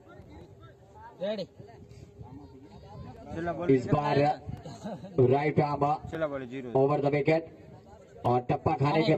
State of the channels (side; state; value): both; identical; correlation 1.00